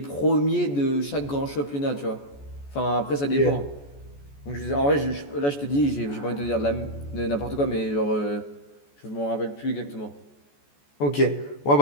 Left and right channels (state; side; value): late; right; 14 ms